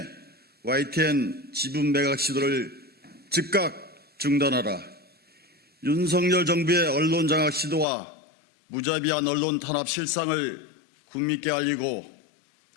YTN 지분 매각 시도를 즉각 중단하라. 윤석열 정부의 언론장악 시도와 무자비한 언론 탄압 실상을 국민께 알리고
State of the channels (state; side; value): drops out; right; at 7.9 s